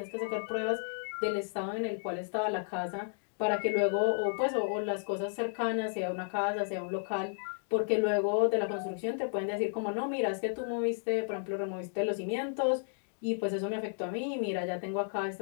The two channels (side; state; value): right; silent; digital silence